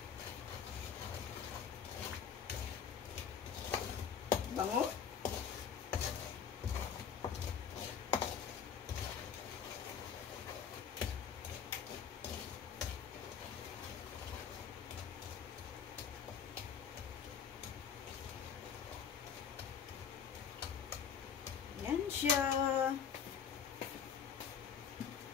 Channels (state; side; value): quieter; right; 7.5 dB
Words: Bango. Yan siya.